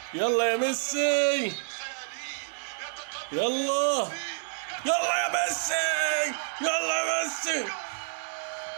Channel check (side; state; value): left; silent; digital silence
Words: يلا يا ميسي، يلا، يلا يا ميسي، يلا يا ميسي.